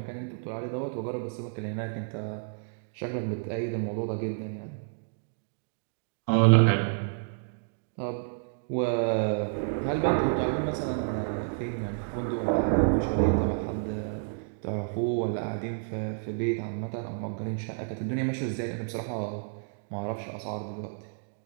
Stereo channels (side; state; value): left; silent; digital silence